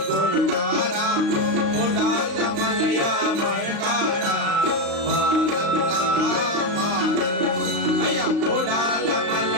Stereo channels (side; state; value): left; late; 35 ms